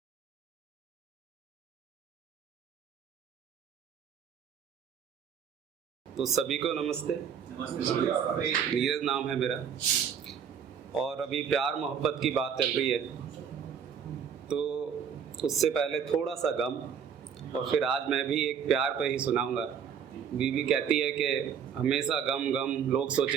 तो सभी को नमस्ते। नीरज नाम है मेरा, और अभी प्यार मोहब्बत की बात चल रही है, तो उससे पहले थोड़ा सा गम, और फिर आज मैं भी एक प्यार पे ही सुनाऊंगा। बीवी कहती है कि हमेशा गम गम, लोग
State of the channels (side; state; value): left; quieter; 7.7 dB